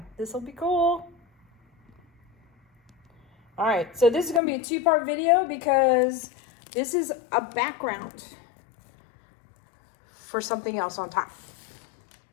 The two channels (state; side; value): drops out; right; at 4.4 s